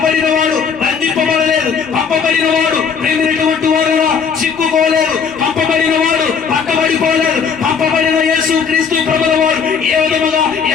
బంధింపబడలేదు, పంపబడినవాడు ప్రేమైనటువంటి వారు చిక్కుకోలేదు, పంపబడినవాడు పక్కబడిపోలేదు. పంపబడిన యేసుక్రీస్తు ప్రభువుల వారు ఏ విధముగా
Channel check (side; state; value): right; quieter; 6.2 dB